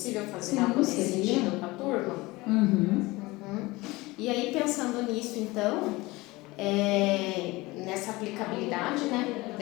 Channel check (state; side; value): quieter; right; 21.4 dB